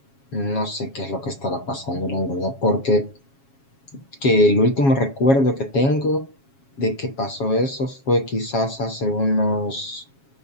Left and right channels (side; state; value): right; late; 7.3 ms